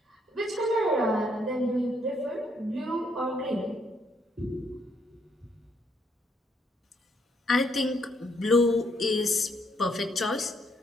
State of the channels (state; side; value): normal; both; correlation 0.72